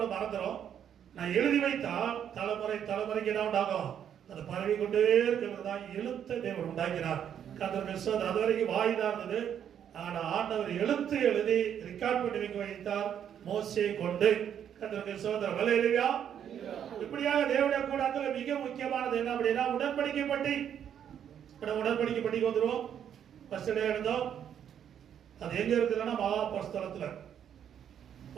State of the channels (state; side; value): quieter; left; 9.1 dB